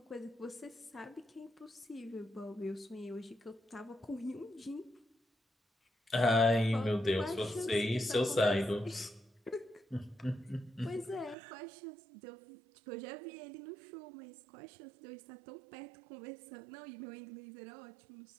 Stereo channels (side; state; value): left; drops out; at 11.4 s